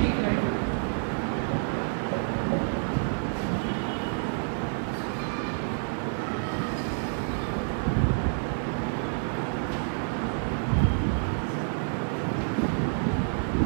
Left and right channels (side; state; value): left; silent; 59 dB below the other